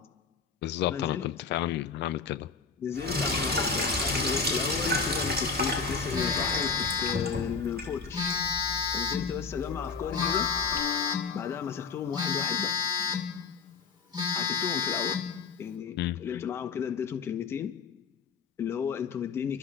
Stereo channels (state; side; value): quieter; right; 5.3 dB